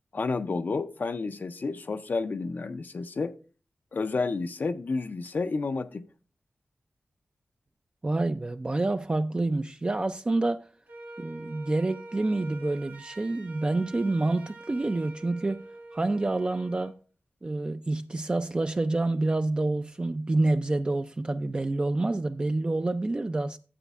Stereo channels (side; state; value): both; normal; correlation 0.95